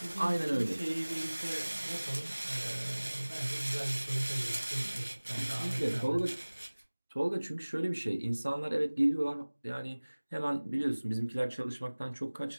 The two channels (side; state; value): both; inverted; correlation -1.00